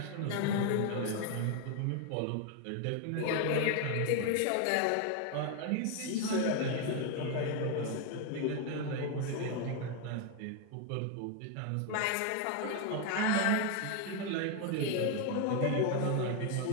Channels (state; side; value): different; both; correlation 0.01